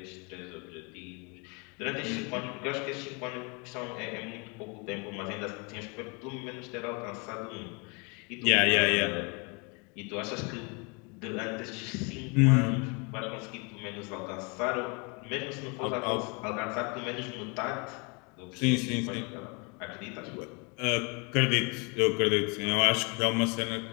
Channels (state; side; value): quieter; right; 32.1 dB